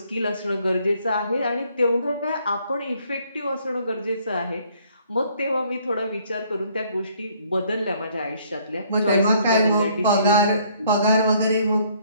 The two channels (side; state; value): both; inverted; correlation -0.63